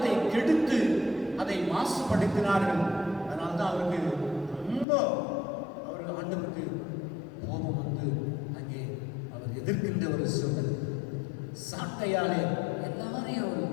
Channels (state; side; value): drops out; right; at 4.9 s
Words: கெடுத்து அதை மாசுபடுத்தினார்கள். அதனால்தான் அவருக்கு ரொம்ப ஆண்டவருக்கு கோபம் வந்து அங்கே அவர் எதிர்க்கின்ற ஒரு சூழல். சாட்டையாலே எல்லாரையும்